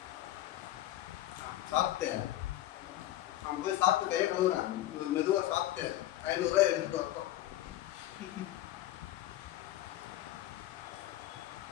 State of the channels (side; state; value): right; quieter; 14.2 dB